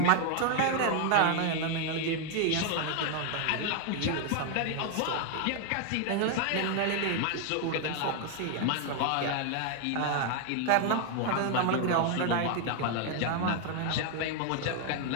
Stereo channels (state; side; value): different; both; correlation 0.00